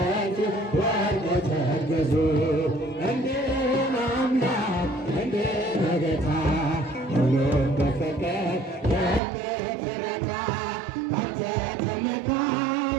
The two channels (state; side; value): drops out; left; at 9.2 s